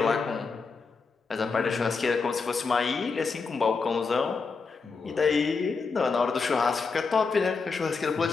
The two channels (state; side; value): quieter; right; 4.7 dB